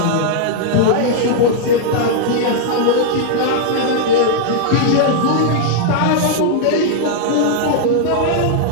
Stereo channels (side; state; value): both; different; correlation -0.01